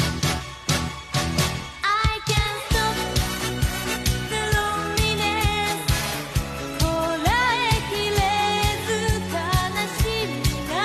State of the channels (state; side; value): identical; both; correlation 1.00